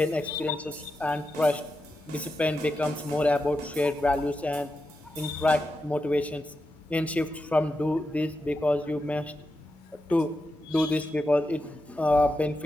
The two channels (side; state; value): both; normal; correlation 0.88